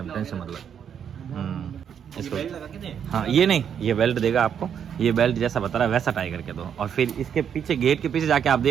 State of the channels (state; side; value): quieter; left; 8.2 dB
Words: टेंशन मतलब। इसको हाँ, ये नहीं, ये बेल्ट देगा आपको, ये बेल्ट जैसा बता रहा है वैसा टाई करके दो। और फिर इसके पीछे, गेट के पीछे जाके आप